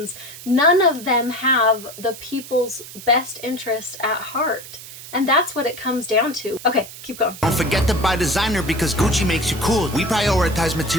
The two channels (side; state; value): right; noise; hiss, 15 dB below the sound